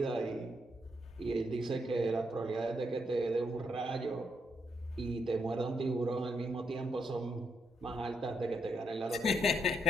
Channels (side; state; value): both; normal; correlation 0.78